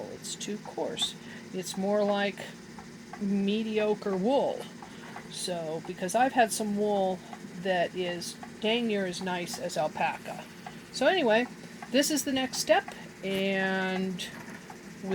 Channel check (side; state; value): both; identical; correlation 1.00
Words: It's too coarse. It's more like mediocre wool. So, because I've had some wool that is dang near as nice as alpaca. So anyway, this is the next step, and